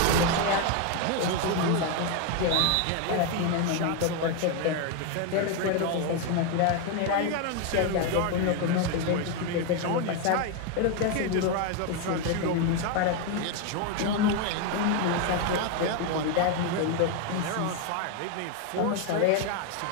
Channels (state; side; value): different; both; correlation 0.01